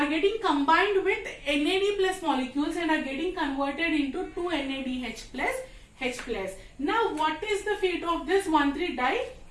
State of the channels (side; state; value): both; identical; correlation 1.00